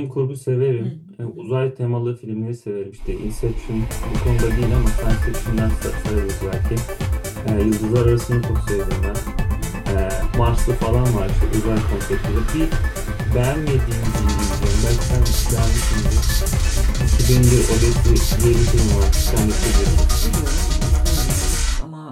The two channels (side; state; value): both; identical; correlation 1.00